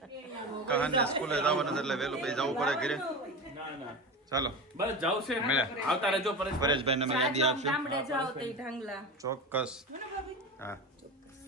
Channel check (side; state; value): both; normal; correlation 0.26